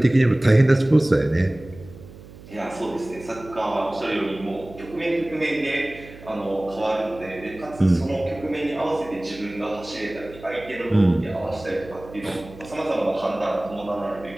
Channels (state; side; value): noise; right; hum, 18 dB below the sound